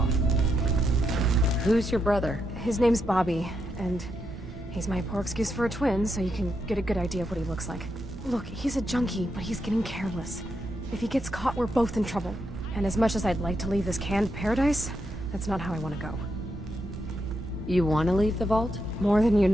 Who's your brother? His name's Bobby, and he's my poor excuse for a twin, so you can get a good idea of what he looks like. Look, he's a junkie, but he's getting careless. If he gets caught, we're both in trouble. And as much as I'd like to leave this canned paradise, that's not how I want to go. You want to leave the vault? More than you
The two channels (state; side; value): normal; both; correlation 0.82